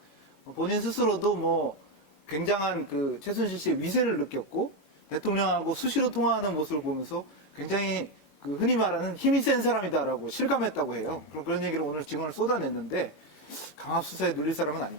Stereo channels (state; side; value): late; right; 22 ms